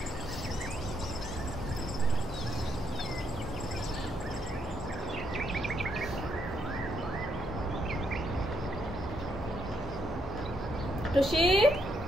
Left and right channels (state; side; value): normal; both; correlation 0.76